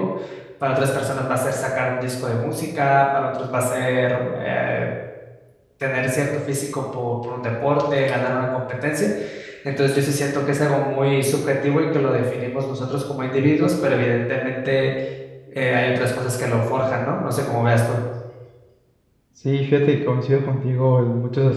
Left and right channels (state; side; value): identical; both; correlation 1.00